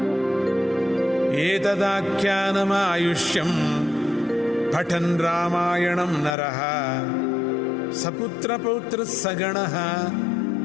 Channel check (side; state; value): right; drops out; at 6.4 s